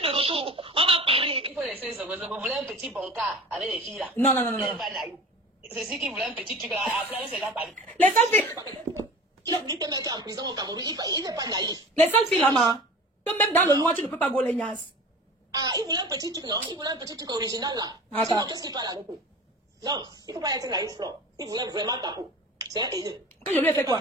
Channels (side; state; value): both; normal; correlation 0.38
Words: de retour. On va parler. Il faut laisser ça. Vous voulez un petit bon cas avec les filles là? Non. C'est ce qui voulait un petit truc là. Après, c'est là, les seules filles. Il a dit que mec en prison au Cameroun. Il n'est pas naïf. Les seules filles là, que même dans le noir, tu ne peux pas gauler Nias. Ah, il voulait un petit truc, non? Il voulait un petit truc original là. Ah, sinon, qu'est-ce qu'il parle avec eux? Non, il ne faut pas être naïf, Flore. Il voulait vraiment ta peau. C'est un haineux. Que je lui ai fait quoi?